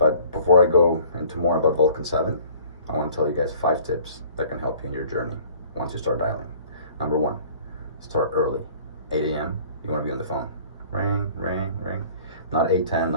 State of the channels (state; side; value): inverted; both; correlation -0.50